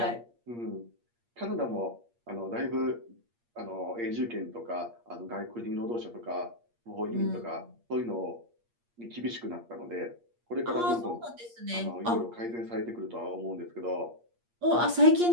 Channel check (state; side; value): late; left; 8.5 ms